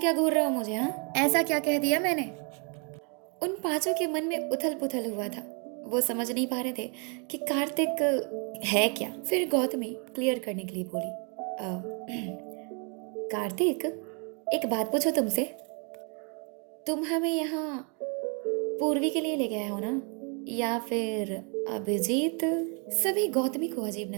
घूर रहे हो मुझे? हाँ, ऐसा क्या कह दिया मैंने? उन पांचों के मन में उथल पुथल हुआ था। वो समझ नहीं पा रहे थे कि कार्तिक है क्या। फिर गौतमी क्लियर करने के लिए बोली, कार्तिक एक बात पूछो तुमसे, तुम हमें यहाँ पूर्वी के लिए ले गए हो ना, या फिर अभिजीत? सभी गौतमी को अजीब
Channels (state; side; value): quieter; left; 36.4 dB